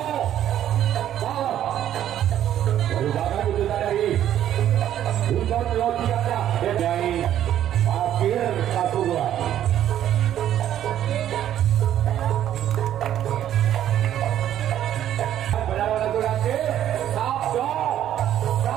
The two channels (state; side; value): quieter; left; 11.2 dB